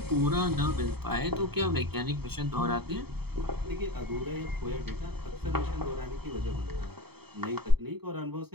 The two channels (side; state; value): left; late; 0.96 ms